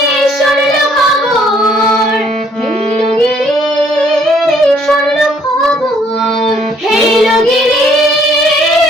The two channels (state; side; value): normal; both; correlation 0.64